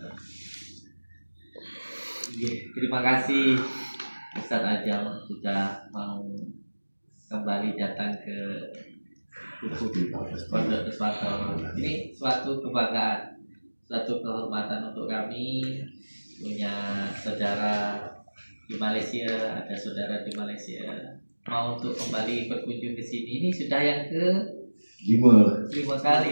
terima kasih Ustaz Ajam sudah mau kembali datang ke Pondok Pesantren. Ini suatu kebanggaan, suatu kehormatan untuk kami punya saudara di Malaysia, ada saudara di Malaysia mau untuk kembali berkunjung ke sini. Ini sudah yang ke 5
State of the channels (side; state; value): both; inverted; correlation -1.00